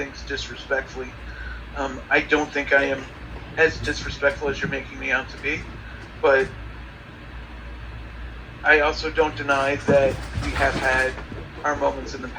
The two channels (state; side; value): identical; both; correlation 1.00